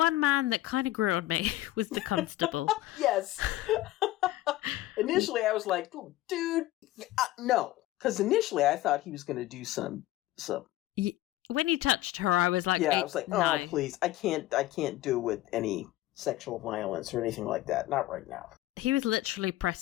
man that kind of grew on me was the constable. Yes. Initially, I was like, dude, no. Because initially, I thought he was going to do some. When he touched her, I was like, I was like, no, please, I can't do with any sexual violence or anything like that. Not right now. He was literally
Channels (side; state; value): right; quieter; 16.1 dB